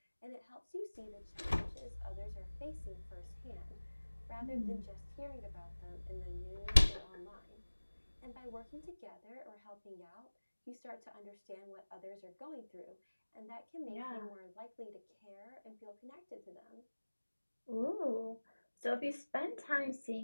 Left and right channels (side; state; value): both; inverted; correlation -1.00